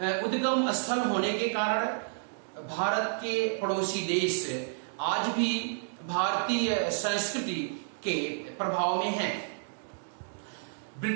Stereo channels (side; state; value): left; silent; digital silence